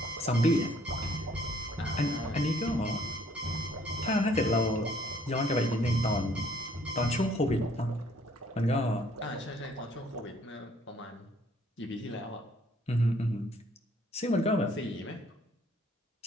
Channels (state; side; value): normal; both; correlation 0.62